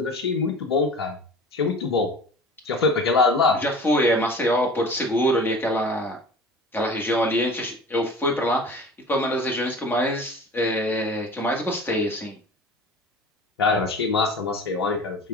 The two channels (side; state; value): both; normal; correlation 0.39